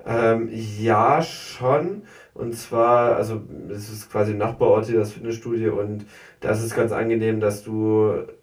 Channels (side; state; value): both; identical; correlation 1.00